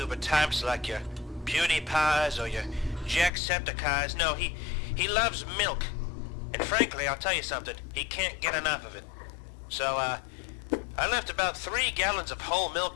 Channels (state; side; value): drops out; right; at 3.3 s